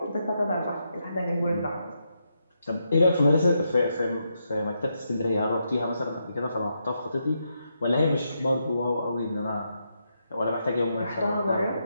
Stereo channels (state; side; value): inverted; both; correlation -0.82